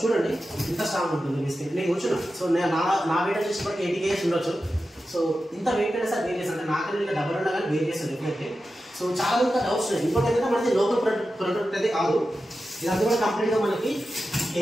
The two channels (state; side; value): normal; both; correlation 0.92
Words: చూడండి ఇంత స్ట్రాంగ్ ఉంటుంది బిస్కెట్. నేను కూర్చున్నా. సో నా వెయిట్ వచ్చేసి 80 kgs ఉండొచ్చు. సో ఇంత వెయిట్ అయినా సార్ వేరియస్ అంటే నాకన్నా ఇంకా డబ్బులు ఉన్నా కానీ వేరియస్ డెఫినెట్లీ. సో చాలా మంది డౌట్స్ ఉన్నాయి. ఇంకోటి ఏంటంటే మనకి లోకల్ ప్రొడక్ట్ అయితే కాదు. ఇదంతా కూడా కంప్లీట్గా మనకి